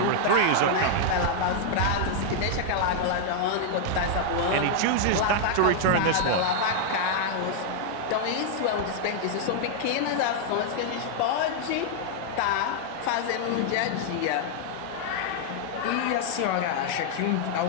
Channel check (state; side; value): different; both; correlation -0.01